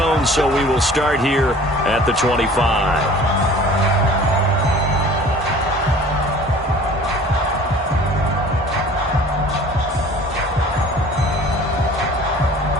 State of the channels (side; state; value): both; normal; correlation 0.47